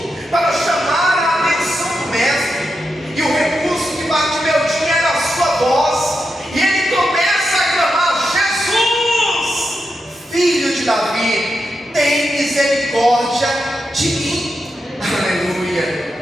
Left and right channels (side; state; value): both; normal; correlation 0.86